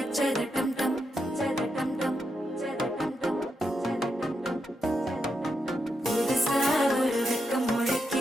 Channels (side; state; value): both; normal; correlation 0.84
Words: அச்சத டம் டம் டம் டம் புதுசா ஒரு வெக்கம்